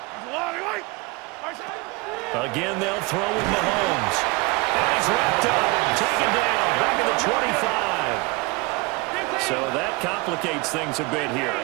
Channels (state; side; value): quieter; left; 26.0 dB